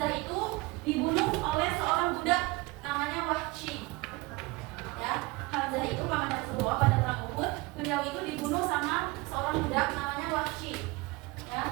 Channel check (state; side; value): quieter; left; 23.2 dB